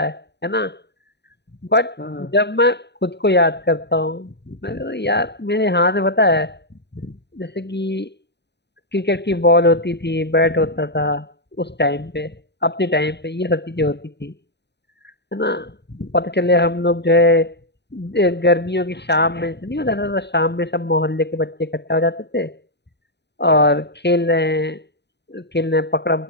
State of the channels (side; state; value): right; late; 0.50 ms